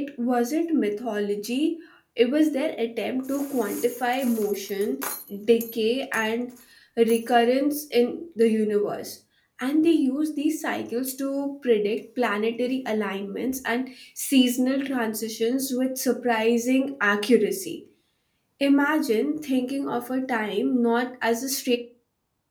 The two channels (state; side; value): identical; both; correlation 1.00